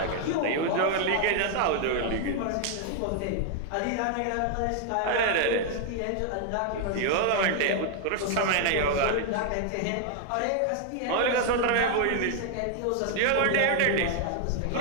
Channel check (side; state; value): both; different; correlation 0.00